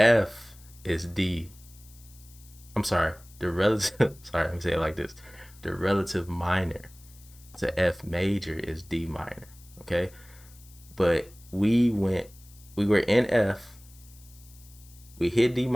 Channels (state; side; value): noise; left; hiss, 24 dB below the sound